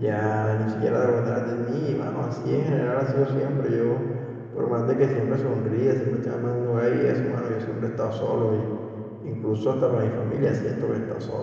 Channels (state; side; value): identical; both; correlation 1.00